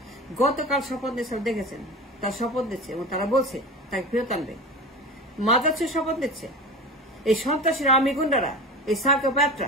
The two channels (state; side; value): normal; both; correlation 0.30